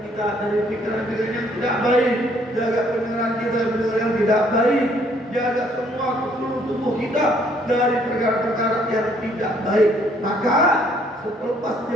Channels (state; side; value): normal; both; correlation 0.64